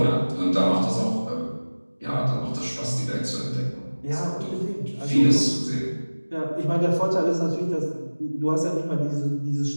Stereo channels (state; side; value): inverted; both; correlation -1.00